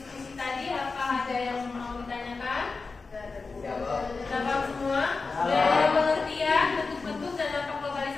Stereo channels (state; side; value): quieter; right; 4.2 dB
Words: tadi, apa ada yang mau ditanyakan? Jawab semua. Dari pengertian, bentuk-bentuk dan dampak